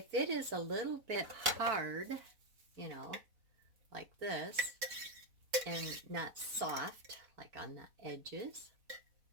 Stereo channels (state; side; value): late; left; 4.0 ms